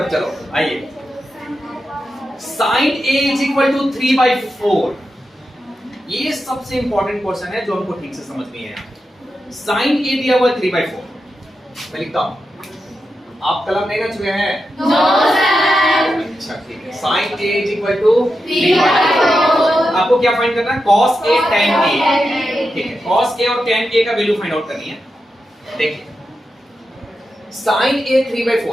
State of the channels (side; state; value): both; normal; correlation 0.89